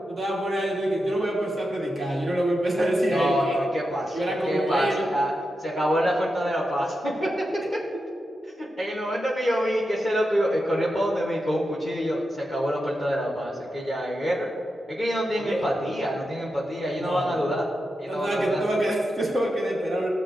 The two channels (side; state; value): both; normal; correlation 0.88